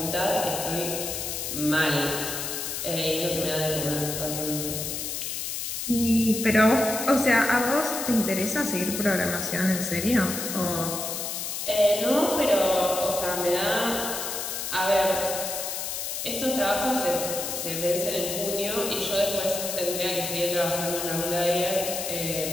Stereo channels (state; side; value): noise; left; hiss, 4 dB below the sound